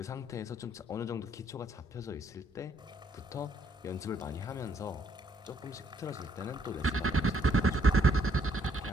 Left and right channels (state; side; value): normal; both; correlation 0.69